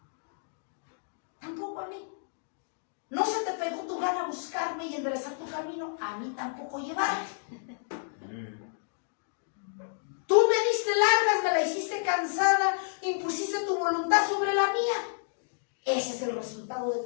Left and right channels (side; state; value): right; silent; digital silence